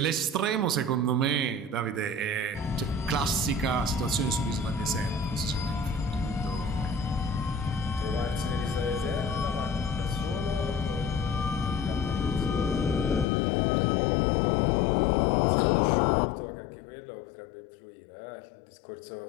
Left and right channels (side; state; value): right; drops out; at 13.2 s